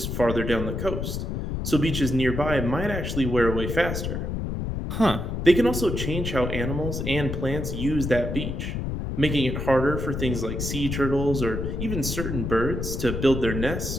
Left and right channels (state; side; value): noise; left; rumble, 3 dB below the sound